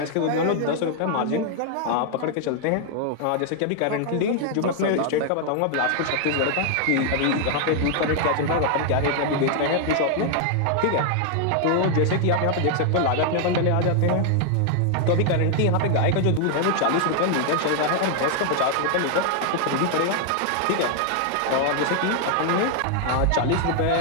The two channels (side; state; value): both; different; correlation 0.00